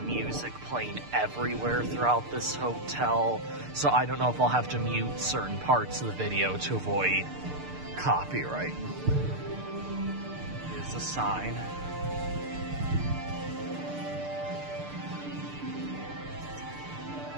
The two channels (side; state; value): left; late; 6.7 ms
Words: music playing everywhere throughout this hotel, so I don't know if I'll have to mute certain parts of the video to avoid copyright. Here's the sign.